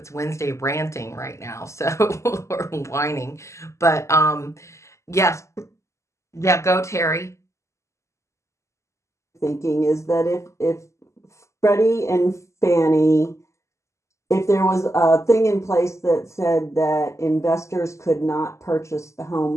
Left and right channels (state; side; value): late; right; 0.14 ms